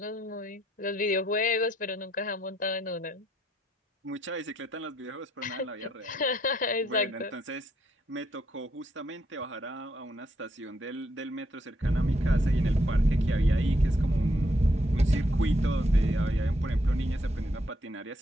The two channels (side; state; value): both; normal; correlation 0.74